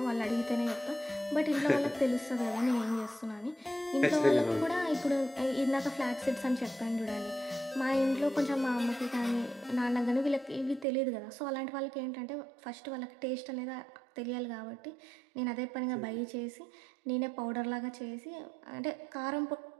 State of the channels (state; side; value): drops out; left; at 10.9 s